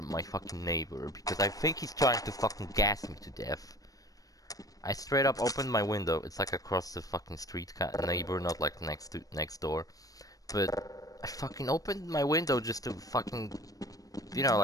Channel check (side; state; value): right; late; 0.17 ms